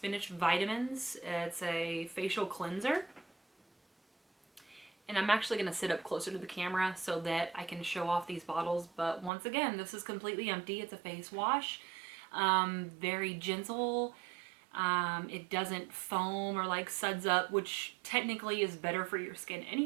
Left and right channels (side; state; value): left; drops out; at 9.3 s